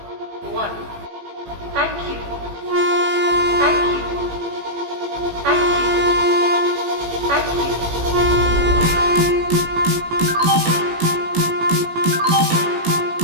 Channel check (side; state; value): left; late; 18 ms